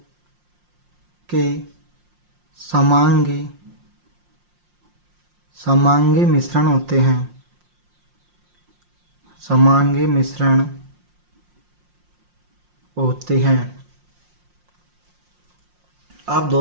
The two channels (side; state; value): left; late; 5.6 ms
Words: के समांगी मिश्रण होते हैं। समांगी मिश्रण होते हैं। अब